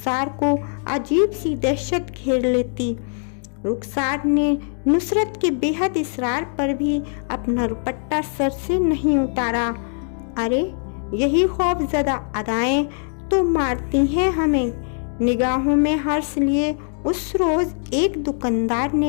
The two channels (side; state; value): right; silent; 56 dB below the other